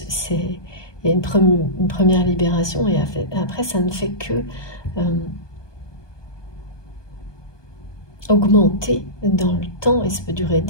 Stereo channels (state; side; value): late; right; 1.2 ms